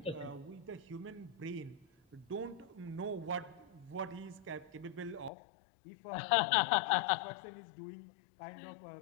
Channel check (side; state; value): right; drops out; at 5.3 s